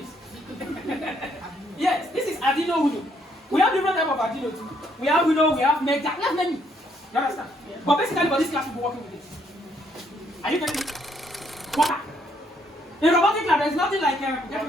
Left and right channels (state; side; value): normal; both; correlation 0.70